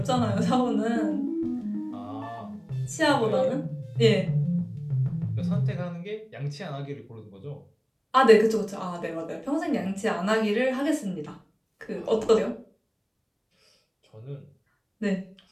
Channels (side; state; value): both; identical; correlation 1.00